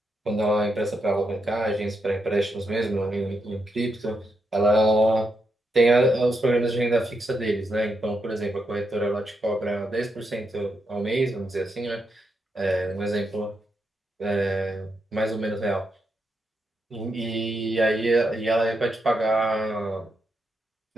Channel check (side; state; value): both; normal; correlation 0.82